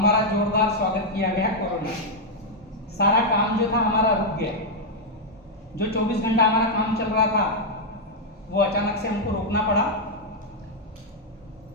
जोरदार स्वागत किया गया कोरोना। सारा काम जो था हमारा रुक गया। जो 24 घंटा हमारा काम चल रहा था, वो अचानक से हमको रोकना पड़ा।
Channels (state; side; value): normal; both; correlation -0.02